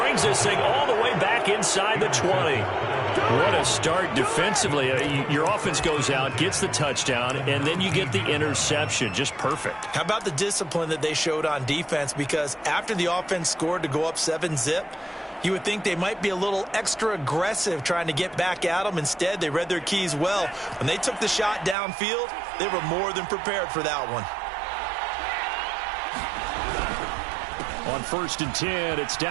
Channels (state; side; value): drops out; left; at 21.8 s